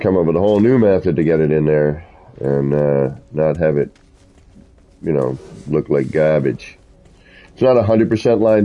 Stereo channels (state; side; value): identical; both; correlation 1.00